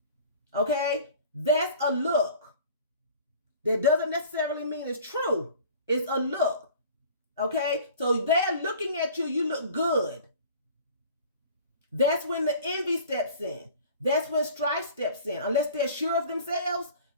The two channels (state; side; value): inverted; both; correlation -0.45